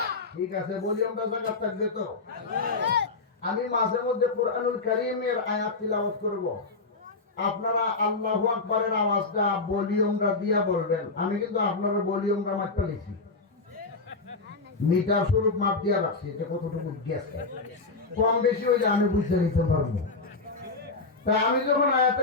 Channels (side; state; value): right; quieter; 3.8 dB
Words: ঠিক আছে ভলিউমটা জায়গা থাকবে তো আমি মাঝে মধ্যে কোরআনুল কারীমের আয়াত তিলাওয়াত করব আপনারা আল্লাহু আকবারের আওয়াজটা ভলিউমটা দিয়া বলবেন আমি কিন্তু আপনারা ভলিউমটা মাপতে লিখি মিটার স্বরূপ মাপ দিয়া রাখছি যে কতটুকু গেছে কম বেশি হয়ে যায় আমি বুঝতে নিতে পারবো তা আমি যখন আয়াতে